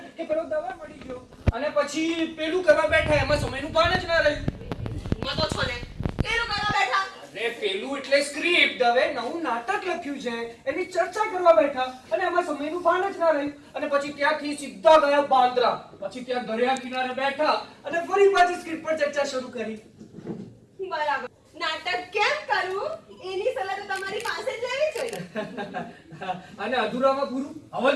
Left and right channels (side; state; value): both; identical; correlation 1.00